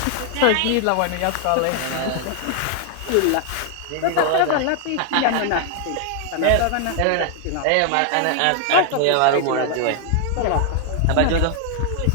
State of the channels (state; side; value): different; both; correlation 0.00